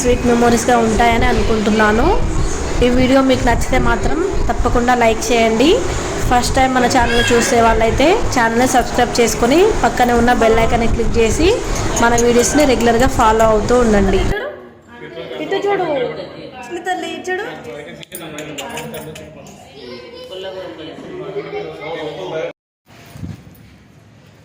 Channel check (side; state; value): both; identical; correlation 1.00